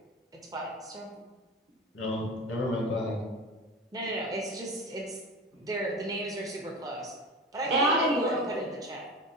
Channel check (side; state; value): both; normal; correlation 0.30